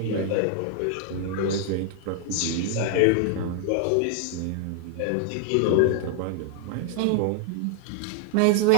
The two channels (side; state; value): both; different; correlation 0.00